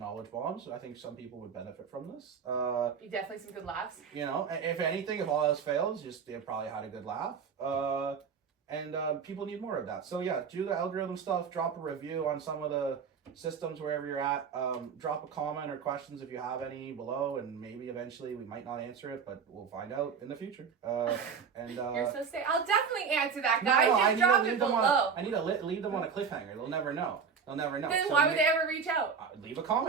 bombs. I think some people would benefit from this. Definitely some good laughs. You know, if anything, if all else fails, just they probably had a good laugh. And people need more of that. So yeah, do the algorithm stuff. Drop a review on some of the systems wherever you're at. Drop a comment or questions if you have any below, and maybe eventually we might not answer it, but we'll find out in the future. You're so sick. I'll definitely answer that, guys. Just drop it below. I need to leave them on a cliffhanger. They'll never know. Then why would they ever reach out? Leave a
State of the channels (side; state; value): left; quieter; 6.2 dB